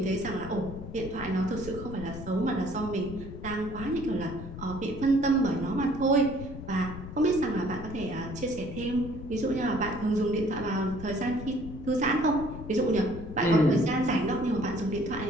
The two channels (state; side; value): noise; left; rumble, 11 dB below the sound